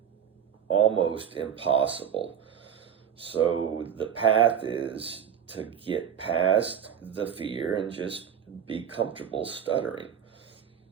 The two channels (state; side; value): quieter; left; 8.6 dB